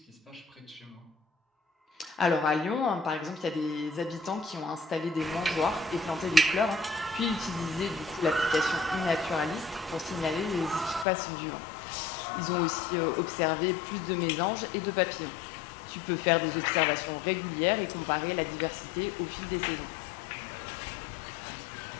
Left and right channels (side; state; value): right; drops out; at 11.1 s